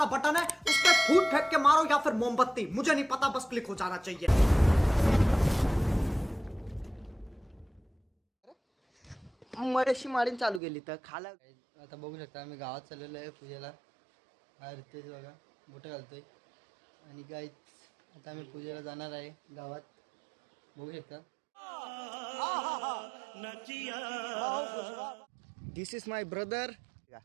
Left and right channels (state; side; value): drops out; left; at 10.6 s